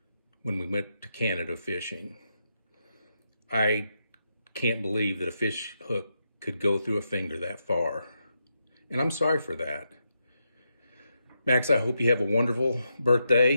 when we went to Canada fishing. I can't believe that a fish hook could go through a finger that far. And I'm sorry for that. Max, I hope you have a wonderful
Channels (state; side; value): inverted; both; correlation -0.84